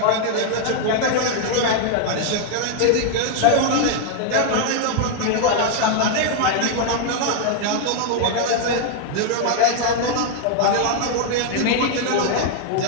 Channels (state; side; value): different; both; correlation 0.00